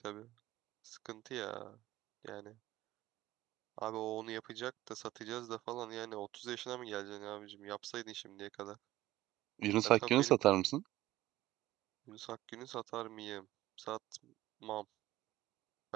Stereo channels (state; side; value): quieter; left; 15.8 dB